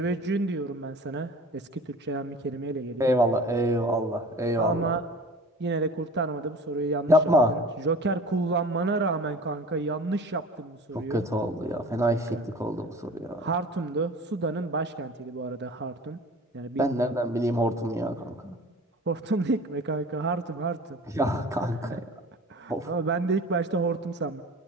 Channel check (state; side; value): normal; both; correlation 0.41